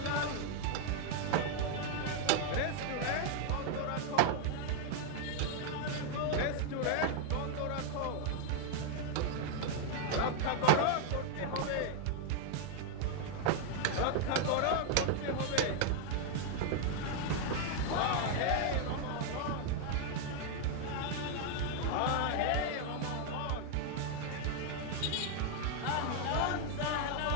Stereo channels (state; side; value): different; both; correlation 0.00